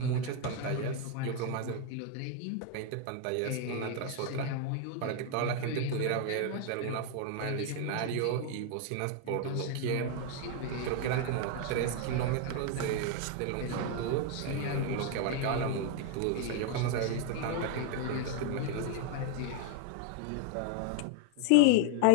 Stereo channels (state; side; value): different; both; correlation 0.00